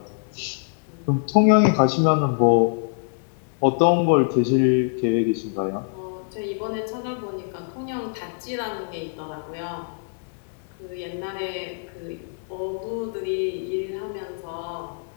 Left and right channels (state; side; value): silent; right; digital silence